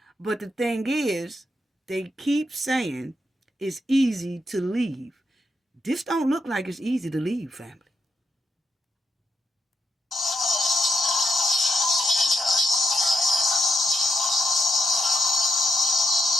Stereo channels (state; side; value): normal; both; correlation 0.81